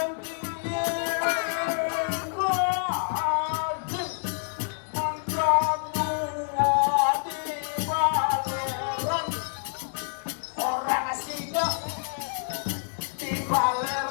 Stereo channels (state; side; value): silent; right; 60 dB below the other